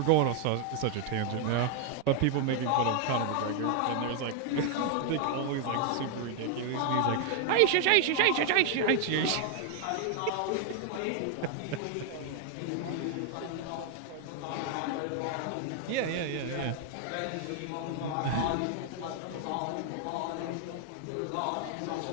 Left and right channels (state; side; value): different; both; correlation 0.00